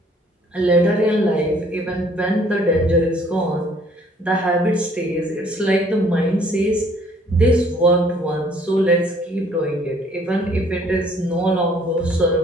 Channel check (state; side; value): normal; both; correlation 0.60